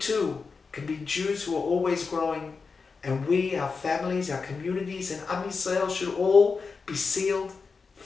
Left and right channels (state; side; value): quieter; right; 4.8 dB